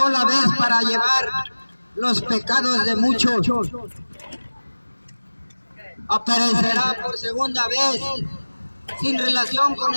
vez para llevar los pecados de muchos. Aparecerá por segunda vez sin relación con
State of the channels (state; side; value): inverted; both; correlation -1.00